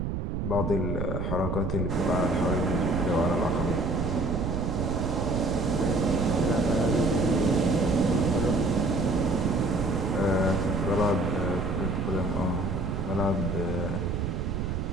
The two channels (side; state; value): right; noise; rumble, 2 dB below the sound